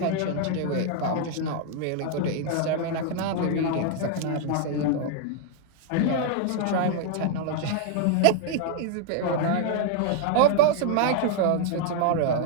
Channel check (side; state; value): both; different; correlation 0.00